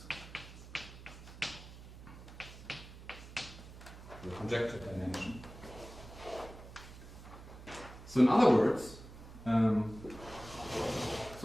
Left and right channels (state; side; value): noise; right; hum, 15 dB below the sound